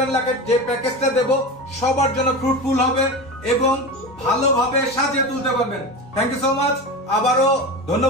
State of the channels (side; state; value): both; normal; correlation 0.26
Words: লাখের যে প্যাকেজটা দেব সবার জন্য ফ্রুটফুল হবে এবং ভালোভাবে সাজিয়ে তুলতে পারবেন। Thank you so much. আবারও